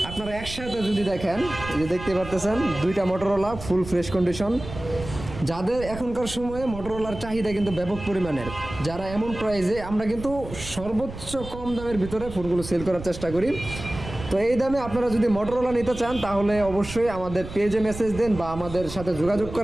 আপনারা একসাথে যদি দেখেন, এই যে দেখতে পারতেছেন দুইটা মোটরোলা ফুল ফ্রেশ কন্ডিশন। যাদের এখনকার সময়ে মোটরোলার চাহিদা কিন্তু ব্যাপক পরিমাণের, যারা এমন প্রাইসে, আমরা কিন্তু সর্বোচ্চ কম দামের ভিতরে ফোনগুলো সেল করার চেষ্টা করি। তো এই দামে আপনারা যদি মোটরোলা নিতে চান তাহলে অবশ্যই আমাদের পেজে মেসেজ দেন বা আমাদের সাথে যোগাযোগ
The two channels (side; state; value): right; noise; rumble, 12 dB below the sound